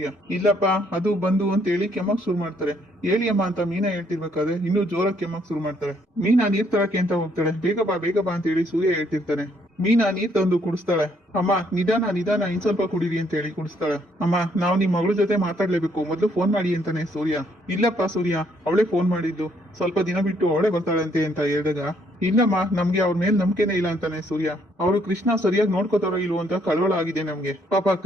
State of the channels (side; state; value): both; normal; correlation 0.69